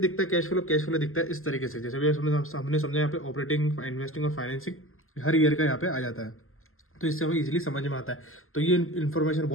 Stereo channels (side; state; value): right; late; 0.62 ms